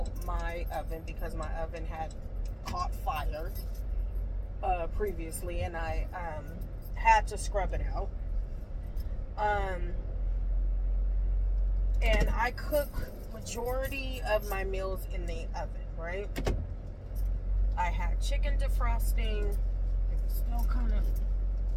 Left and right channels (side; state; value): both; identical; correlation 1.00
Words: my oven because my oven had caught fire previously, and I had to scrub it out. And I cook majority of my meals in the oven, right? I had chicken defrosting. It was still kind of